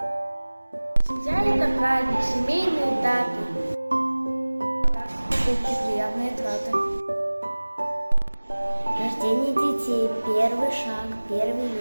Семья – это праздник, семейные даты. Покупки, приятные траты. Рождение детей, первый шаг, первый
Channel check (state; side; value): inverted; both; correlation -1.00